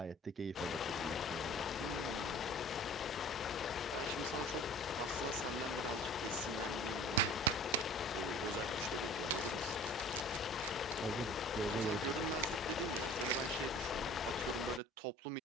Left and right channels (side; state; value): both; normal; correlation 0.45